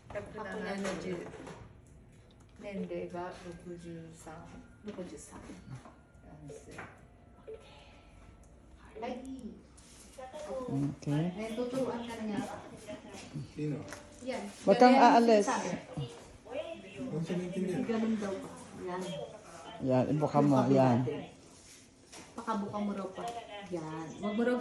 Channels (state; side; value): identical; both; correlation 1.00